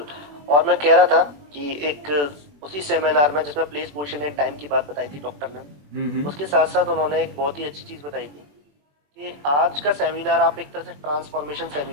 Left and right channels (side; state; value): left; late; 21 ms